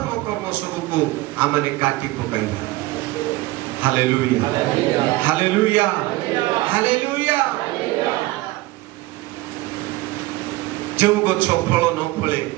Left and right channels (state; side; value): quieter; left; 19.4 dB